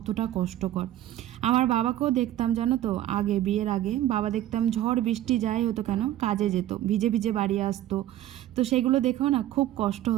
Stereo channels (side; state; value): left; quieter; 13.1 dB